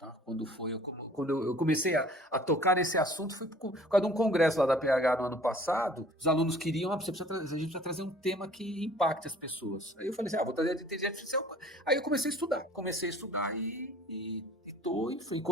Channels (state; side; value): normal; both; correlation 0.51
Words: Quando eu comecei a tocar nesse assunto, foi por causa de um congresso lá da PH no ano passado. Os alunos queriam, a gente precisa trazer um tema que impacte as pessoas. Aí eu falei assim, vou trazer a inteligência artificial. Aí eu comecei a estudar e